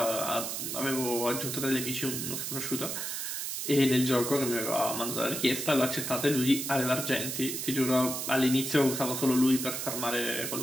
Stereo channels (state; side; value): noise; right; hiss, 4 dB below the sound